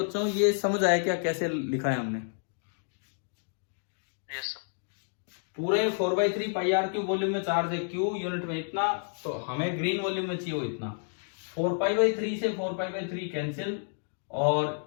ये समझ आया क्या कैसे लिखा है हमने? Yes sir. पूरे 4/3 पाई आर क्यूब वॉल्यूम में चार्ज है, क्यू यूनिट में इतना, तो हमें ग्रीन वॉल्यूम में चाहिए वो इतना। 4π/3 से 4π/3 कैंसिल, और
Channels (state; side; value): silent; right; digital silence